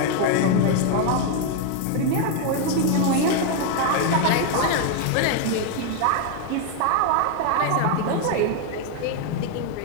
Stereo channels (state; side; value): different; both; correlation 0.00